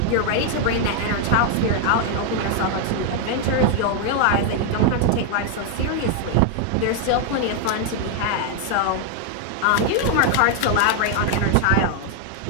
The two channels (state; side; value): different; both; correlation 0.00